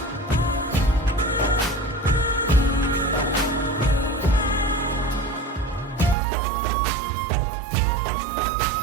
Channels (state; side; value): drops out; left; at 6.2 s